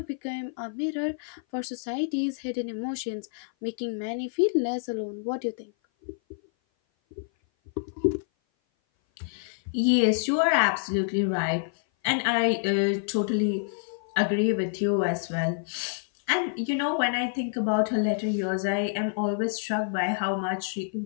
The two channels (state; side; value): silent; right; 56 dB below the other